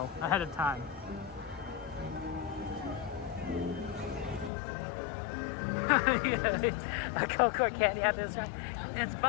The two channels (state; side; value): drops out; right; at 4.5 s